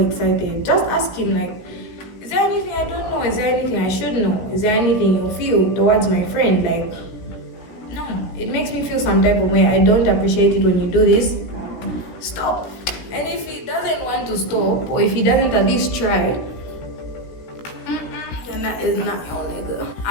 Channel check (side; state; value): right; late; 17 ms